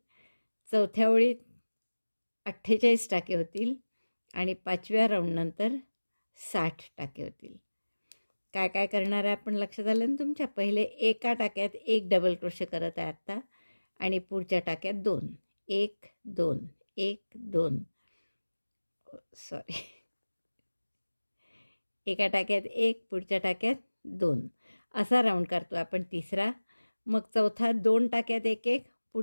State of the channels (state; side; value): inverted; both; correlation -1.00